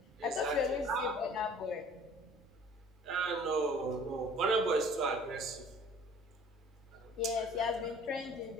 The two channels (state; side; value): normal; both; correlation 0.50